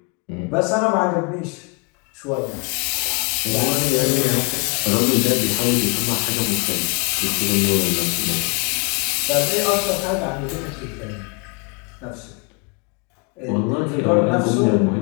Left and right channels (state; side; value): quieter; right; 32.7 dB